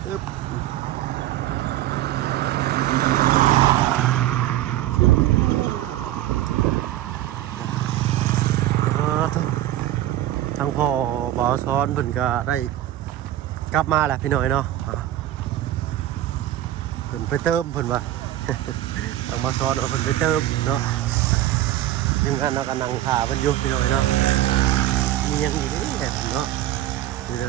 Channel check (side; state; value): left; quieter; 13.8 dB